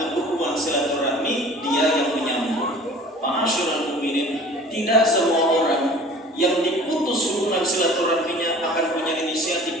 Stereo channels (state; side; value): normal; both; correlation 0.45